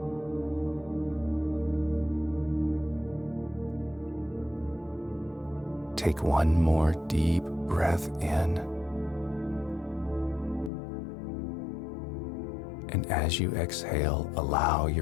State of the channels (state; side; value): drops out; right; at 10.7 s